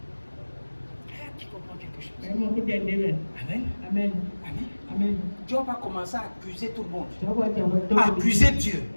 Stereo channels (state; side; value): inverted; both; correlation -1.00